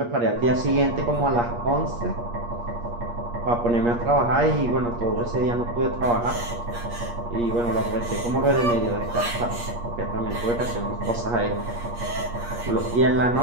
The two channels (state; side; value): late; left; 8.5 ms